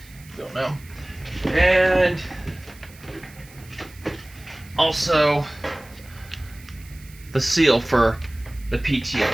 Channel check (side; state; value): right; noise; hiss, 23 dB below the sound